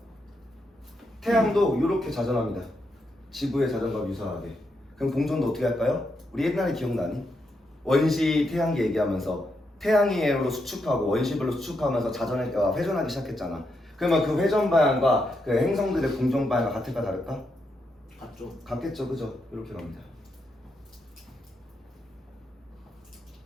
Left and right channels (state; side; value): normal; both; correlation 0.82